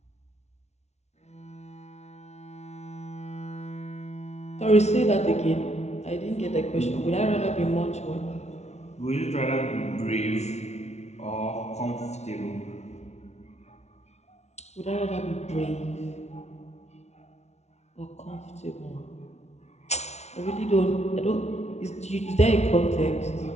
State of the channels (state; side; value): late; right; 0.32 ms